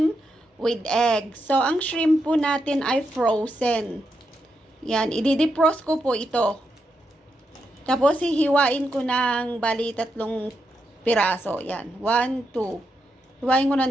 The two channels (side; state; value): both; normal; correlation 0.83